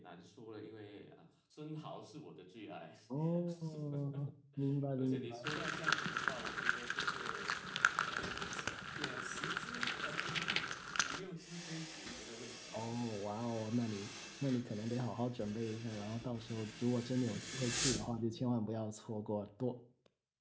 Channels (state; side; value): identical; both; correlation 1.00